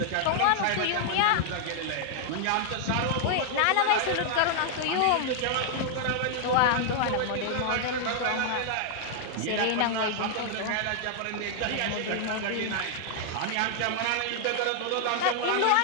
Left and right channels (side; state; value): both; different; correlation 0.00